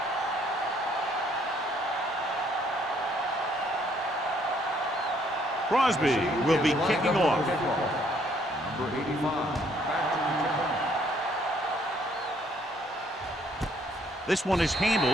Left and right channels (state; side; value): normal; both; correlation 0.66